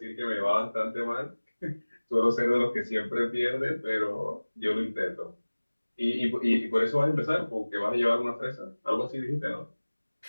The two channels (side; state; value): both; inverted; correlation -1.00